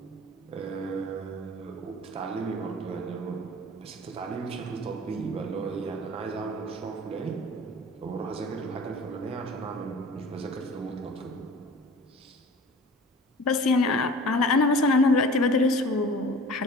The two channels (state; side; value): normal; both; correlation 0.43